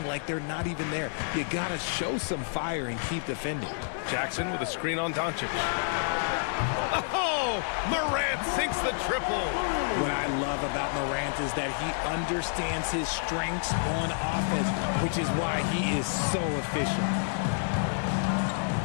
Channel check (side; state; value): right; silent; 57 dB below the other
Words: like they're not even there. You gotta show some fire and keep defending. Jackson with a screen on Doncic. Oh, Morant sinks the triple. What I love about Morant is that he understands his strengths on offense, which is why he is so efficient.